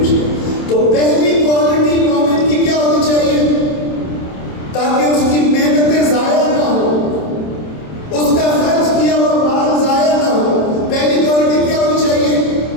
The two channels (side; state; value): right; late; 27 ms